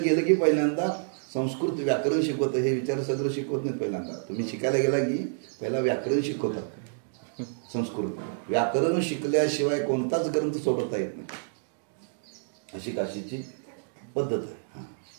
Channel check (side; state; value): left; silent; digital silence